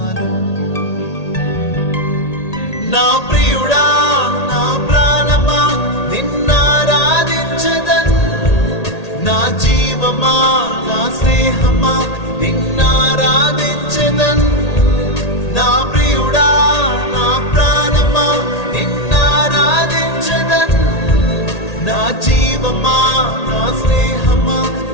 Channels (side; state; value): right; late; 1.8 ms